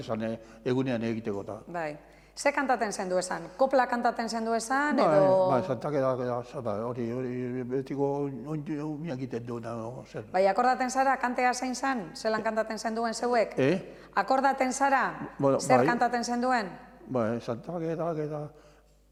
zen egunean egiteko. Ze kantaten zendu esan? Kopla kantaten zendu esan, edo... Santageda, hori betiko miak egiten duena. Bai, akordaten zara, kantea zein zen? Zelan kantaten zenduen zeuek? Akordaten zara, zer kantaten zenduen? Bai, Santageda,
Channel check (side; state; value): both; identical; correlation 1.00